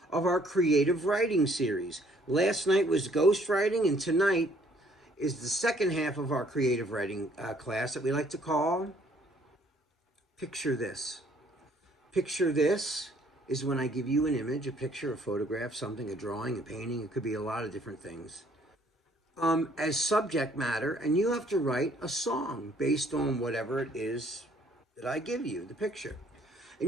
of our creative writing series. Last night was ghostwriting, and tonight is the second half of our creative writing class that we like to call Picture This. Picture This is when I give you an image, a picture, a photograph, something, a drawing, a painting. It could be a lot of different things. As subject matter, and you have to write a song based on whatever it is that I give you, the picture.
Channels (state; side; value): normal; both; correlation 0.62